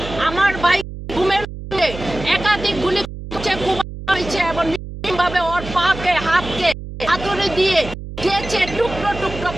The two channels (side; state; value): right; noise; hum, 11 dB below the sound